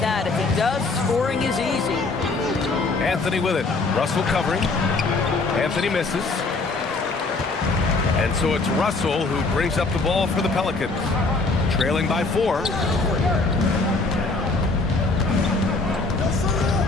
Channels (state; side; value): quieter; right; 3.6 dB